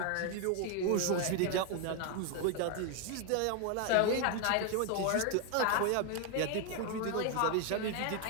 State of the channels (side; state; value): both; different; correlation 0.01